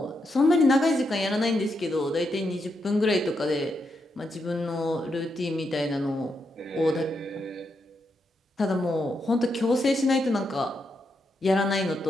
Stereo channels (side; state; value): both; normal; correlation 0.82